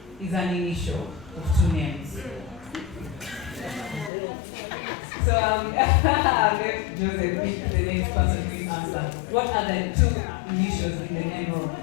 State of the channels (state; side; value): drops out; right; at 4.1 s